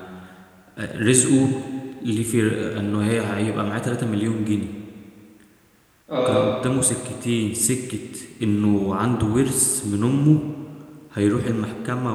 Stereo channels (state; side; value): identical; both; correlation 1.00